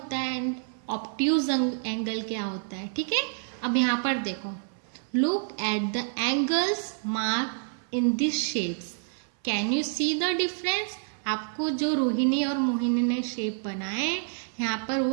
है एंड ऑब्ट्यूज एंगल क्या होता है। ठीक है। अब यहाँ पर देखो, look at the angles mark in this shapes, can you see the difference. आपको जो रोहिणी और मोहिनी ने शेप बनाए यहाँ पर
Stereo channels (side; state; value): left; silent; 57 dB below the other